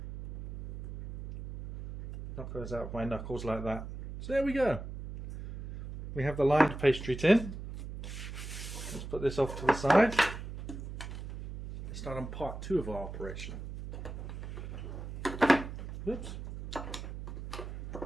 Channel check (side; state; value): right; noise; hum, 9 dB below the sound